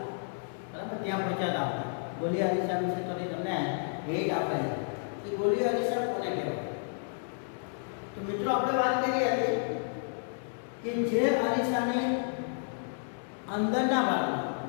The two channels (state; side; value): silent; right; digital silence